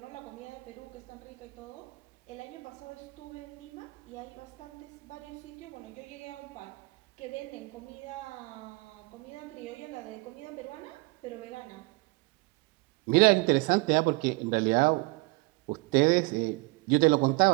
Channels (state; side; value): quieter; left; 26.4 dB